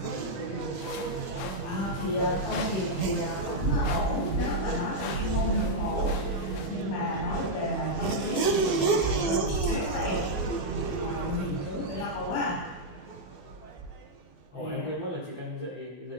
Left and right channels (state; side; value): late; right; 21 ms